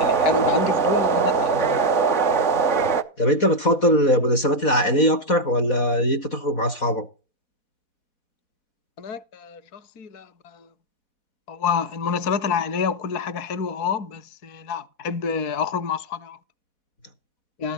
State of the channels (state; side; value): late; right; 4.1 ms